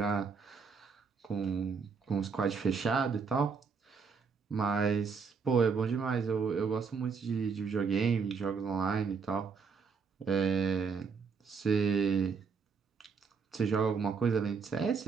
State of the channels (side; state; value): left; quieter; 5.3 dB